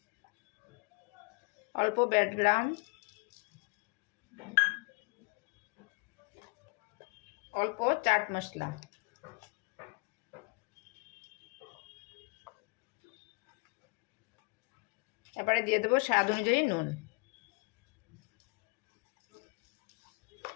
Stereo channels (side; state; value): right; quieter; 29.9 dB